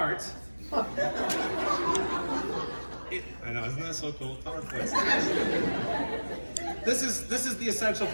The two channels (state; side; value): inverted; both; correlation -1.00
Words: I know, isn't that so cool? PowerPoint. This is the essential